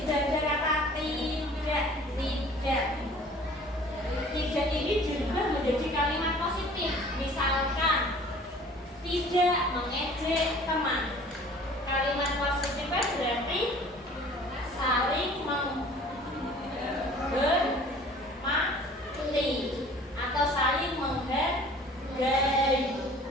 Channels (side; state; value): both; normal; correlation 0.49